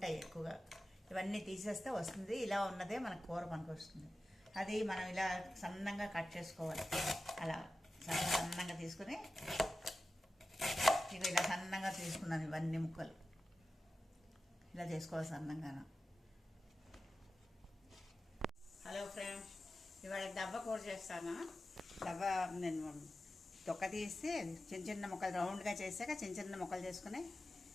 ఎక్కువగా, ఇవన్నీ తీసేస్తే వస్తుంది. ఇలా ఉన్నదే మనకు కూర పనికి వస్తుంది. అది మనం ఇలా సన్నంగా కట్ చేసుకోవాలి. అలా సన్నంగా తీసుకుని ఇక ఇలా సన్నంగా తీసుకున్నాను. ఇవన్నీ ముక్కలు ఇలా చేసుకోవాలి సన్నంగాను. హలో ఫ్రెండ్స్, ఇవాళ దవ్వ కూర చేస్తాను. దవ్వ నేను తొక్క తీసి చిన్న చిన్న ముక్కలు రౌండ్గా చేసాక చిన్న చిన్న ముక్కలు చేసుకుని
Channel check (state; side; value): normal; both; correlation 0.94